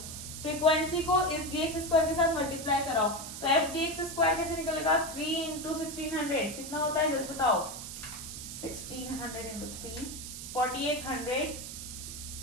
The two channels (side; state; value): right; noise; hiss, 9 dB below the sound